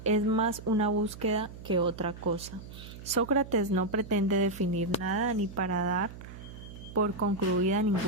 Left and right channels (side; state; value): right; noise; hum, 14 dB below the sound